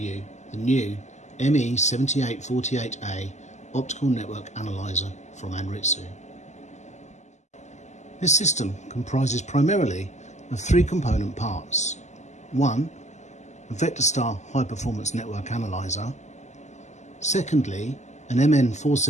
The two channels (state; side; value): late; right; 0.33 ms